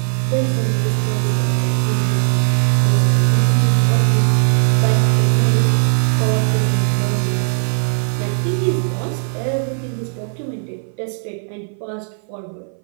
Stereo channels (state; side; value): silent; left; 59 dB below the other